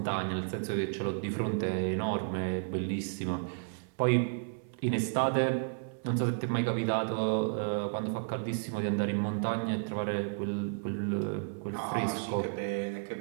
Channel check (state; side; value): silent; left; 56 dB below the other